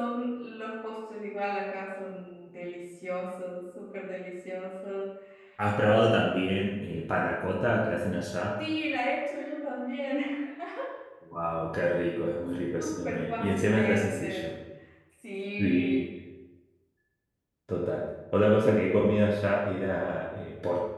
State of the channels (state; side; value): identical; both; correlation 1.00